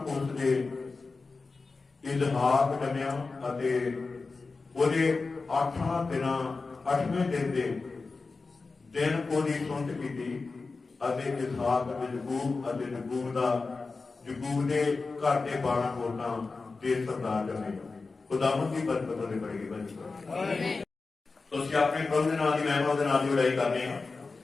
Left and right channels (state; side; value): quieter; right; 4.0 dB